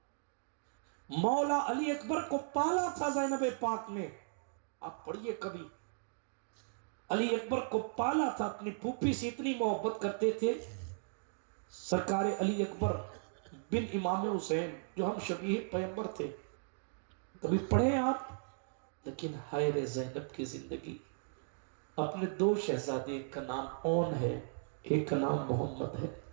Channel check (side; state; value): left; silent; digital silence